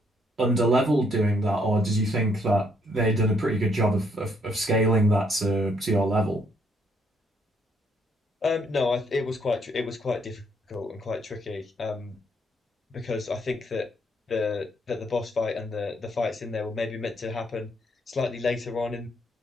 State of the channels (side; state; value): both; normal; correlation 0.70